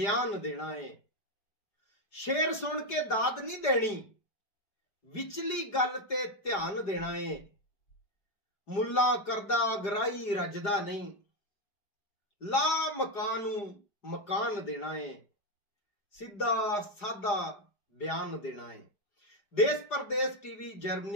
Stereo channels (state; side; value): late; right; 4.9 ms